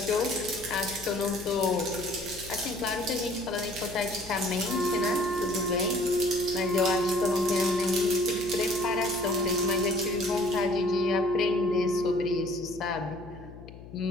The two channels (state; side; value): noise; left; hum, 16 dB below the sound